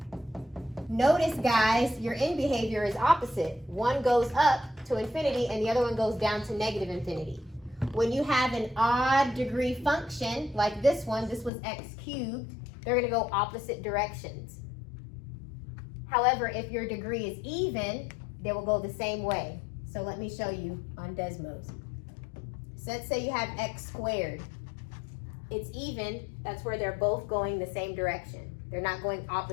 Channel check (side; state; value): right; drops out; at 11.5 s